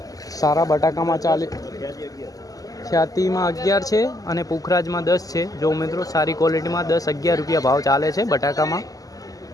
सारा बटाका में चाली ख्याति में 11 है और पुखराज में 10 है। जो मित्रों सारी क्वॉलिटी में 10-11 रुपया भाव चाले छे बटाका में,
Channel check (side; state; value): right; late; 0.17 ms